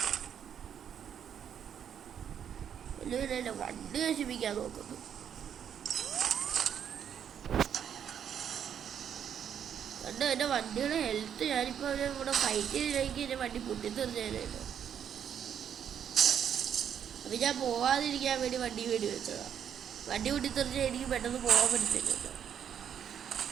എല്ലാവരും എന്റെ വണ്ടി നശിപ്പിക്കാൻ നോക്കുന്നു. കണ്ടോ എന്റെ വണ്ടിയുടെ ഹെൽത്ത്? ഞാനിപ്പോ അവരെ കൂടെ ഫൈറ്റ് ചെയ്തില്ലെങ്കിൽ എന്റെ വണ്ടി പൊട്ടിത്തെറിഞ്ഞാലോ. അപ്പൊ ഞാൻ പോവാതിരിക്കാൻ വേണ്ടി വണ്ടി വേണ്ടി വെച്ചതാ. വണ്ടി പൊട്ടിത്തെറിച്ചാൽ എനിക്ക് പെട്ടെന്ന് പോകാൻ പറ്റുന്നില്ലല്ലോ.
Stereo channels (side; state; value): left; quieter; 8.7 dB